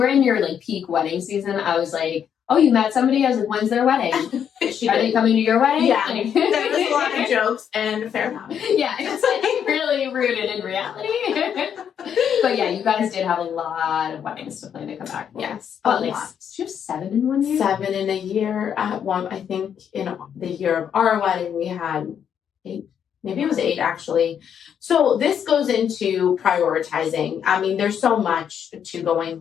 in your peak wedding season, I was like, oh, you met somebody? I was like, when's their wedding? Are they coming to your wedding? Yeah. There was a lot of jokes and a fair amount. Yeah, it's really rooted in reality. But yeah, you guys did have a lot of weddings to plan to come back for. Yes. But did you have 7 in 1 year? 7 in a year. One, I think in the year of our wedding, we had 8. Maybe it was 8 actually. So this goes into prioritizing. I mean, there's so much to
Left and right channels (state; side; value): quieter; right; 8.4 dB